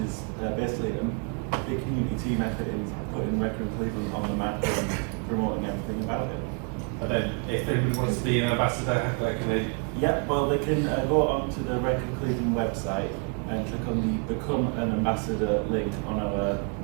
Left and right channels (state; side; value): quieter; left; 36.7 dB